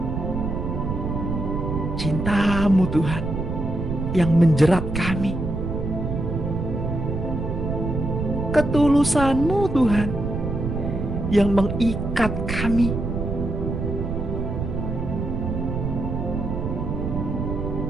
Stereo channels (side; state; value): right; noise; rumble, 3 dB below the sound